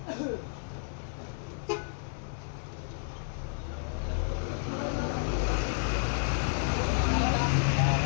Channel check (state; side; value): silent; right; digital silence